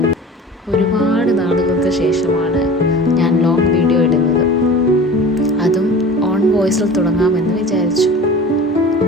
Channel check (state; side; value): normal; both; correlation 0.39